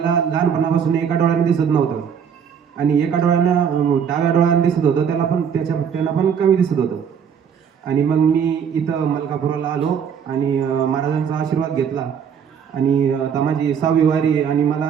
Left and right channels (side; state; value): left; quieter; 7.5 dB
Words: लहानपणापासून एका डोळ्याने दिसत नव्हतं आणि एका डोळ्यानं डाव्या डोळ्याने दिसत होतं, त्यांना पण कमी दिसत होतं. आणि मग मी इथं मलकापुराला आलो आणि महाराजांचा आशीर्वाद घेतला आणि आता माझी 6वी वारी. आणि